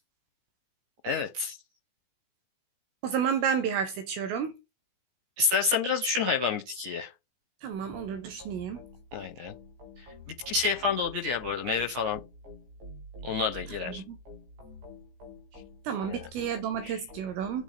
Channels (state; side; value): late; left; 16 ms